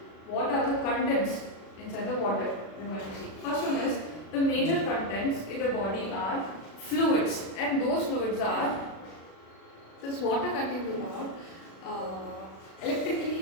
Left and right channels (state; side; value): late; right; 36 ms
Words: what are the contents inside the water? We're going to see. First one is the major contents in the body are fluids, and those fluids are this water contains about